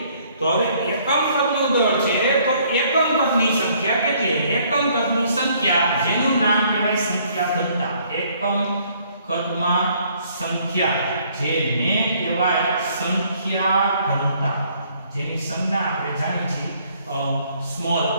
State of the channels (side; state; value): both; inverted; correlation -0.63